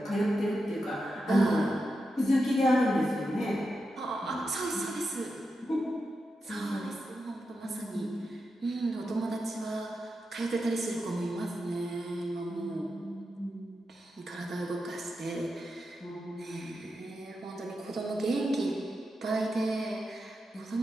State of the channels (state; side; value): normal; both; correlation 0.88